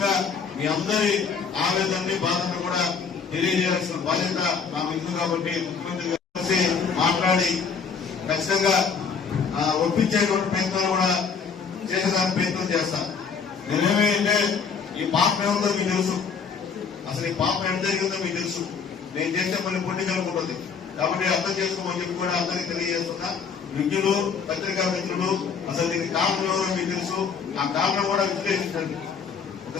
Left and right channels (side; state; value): right; quieter; 5.9 dB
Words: మీ అందరి ఆవేదనని, బాధను కూడా తెలియజేయాల్సిన బాధ్యత నాకు ఉంది. కాబట్టి ముఖ్యమంత్రి గారు మాట్లాడి ఖచ్చితంగా ఒప్పించేటువంటి ప్రయత్నాలు కూడా చేసేదానికి ప్రయత్నం చేస్తాను. నేనేమంటే ఈ పాపం ఏముందో మీకు తెలుసు, అసలు ఈ పాపం ఎంత జరిగిందో మీకు తెలుసు. నేను చేసే పని పొలిటికల్ ఉంటుంది కాబట్టి అర్థం చేసుకోమని చెప్పి కూడా అందరికీ తెలియజేస్తున్నా. విజ్ఞులు, పత్రికా మిత్రులు, అసలు దీనికి కారణం ఎవరో మీకు తెలుసు. ఆ కారణం కూడా విశ్లేషించండి.